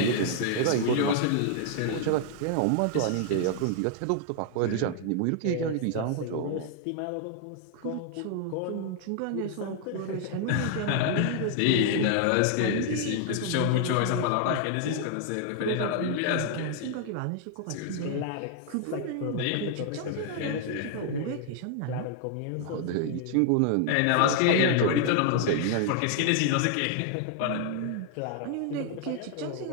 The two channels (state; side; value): different; both; correlation 0.00